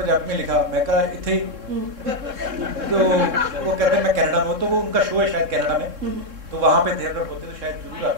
में लिखा, मैं कहा इथे। तो वो कहते मैं कनाडा में हूँ, तो वो उनका शो है शायद कनाडा में, तो वहाँ पे थे, अगर होते तो शायद जरूर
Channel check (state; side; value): late; left; 3.7 ms